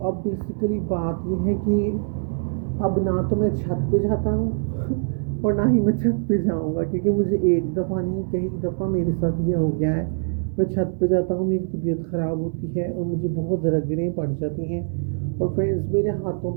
अब बेसिकली बात ये है कि अब ना तो मैं छत पे जाता हूँ और ना ही मैं छत पे जाऊँगा, क्योंकि मुझे एक दफ़ा नहीं कई दफ़ा मेरे साथ ये हो गया है। मैं छत पे जाता हूँ, मेरी तबीयत ख़राब होती है और मुझे बहुत रगड़ें पड़ जाती हैं। और फ्रेंड्स, मेरे हाथों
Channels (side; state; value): left; silent; 63 dB below the other